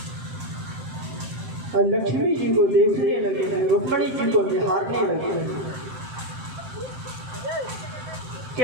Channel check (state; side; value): late; left; 7.6 ms